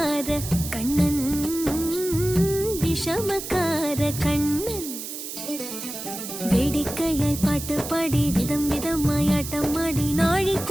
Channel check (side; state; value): right; noise; hiss, 8 dB below the sound